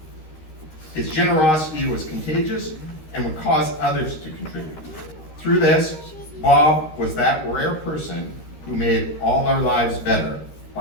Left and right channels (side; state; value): right; late; 13 ms